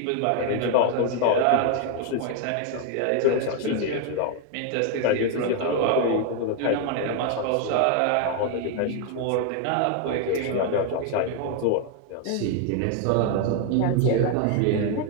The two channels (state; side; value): different; both; correlation 0.01